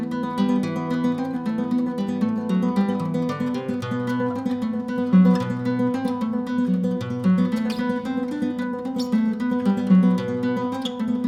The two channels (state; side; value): identical; both; correlation 1.00